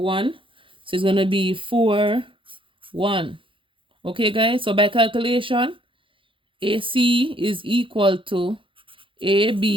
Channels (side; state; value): left; late; 0.25 ms